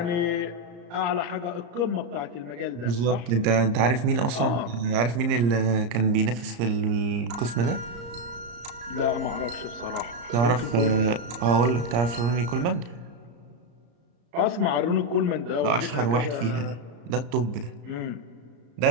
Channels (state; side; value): late; left; 34 ms